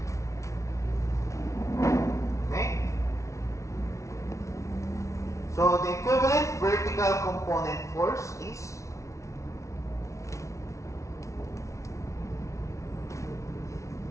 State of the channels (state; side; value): late; right; 0.14 ms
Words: Okay? So the equivalent vertical component force is